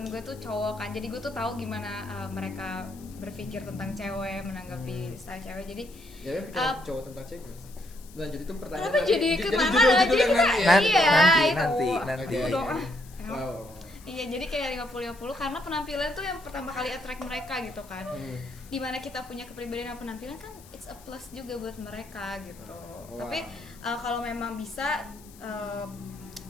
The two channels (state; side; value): noise; left; hiss, 22 dB below the sound